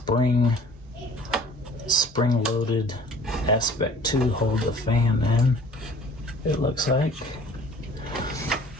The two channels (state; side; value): normal; both; correlation 0.50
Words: aspect to hold the fan in. It looks like